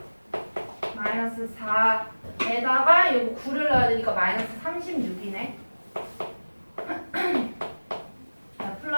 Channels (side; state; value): both; inverted; correlation -1.00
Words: 마이너스 4 에다가 요거 9를 넣어야 되니까 마이너스 36이네. 자,